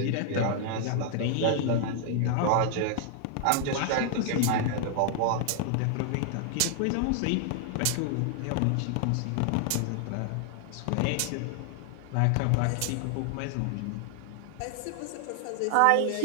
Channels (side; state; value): both; different; correlation 0.00